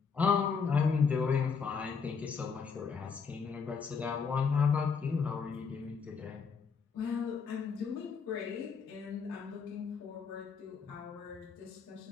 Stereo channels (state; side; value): quieter; right; 5.7 dB